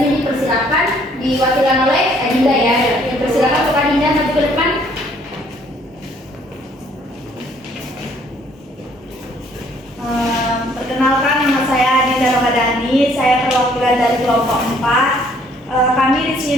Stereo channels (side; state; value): both; normal; correlation 0.62